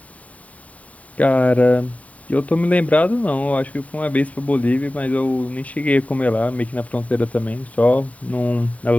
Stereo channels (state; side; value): late; right; 0.068 ms